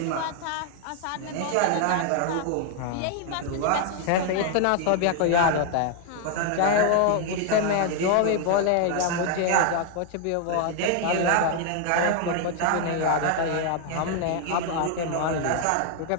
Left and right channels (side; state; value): both; different; correlation 0.00